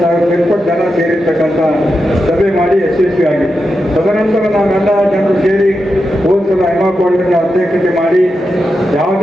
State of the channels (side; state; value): both; normal; correlation 0.88